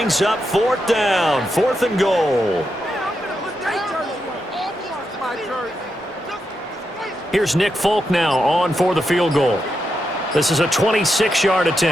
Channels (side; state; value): both; normal; correlation 0.85